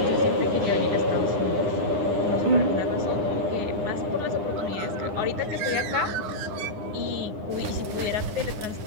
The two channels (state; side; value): late; left; 10 ms